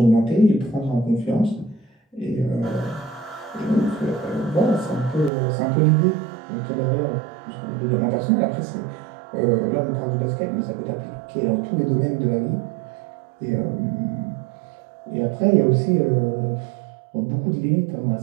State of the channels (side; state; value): left; drops out; at 5.3 s